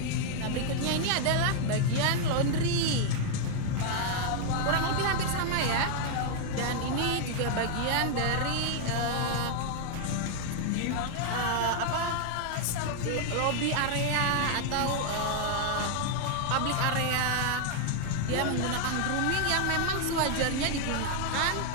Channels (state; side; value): different; both; correlation 0.00